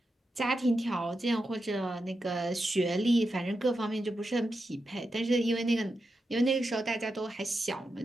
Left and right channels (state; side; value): normal; both; correlation 0.88